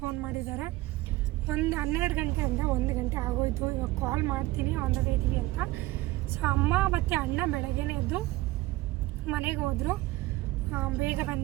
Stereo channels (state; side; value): quieter; left; 18.5 dB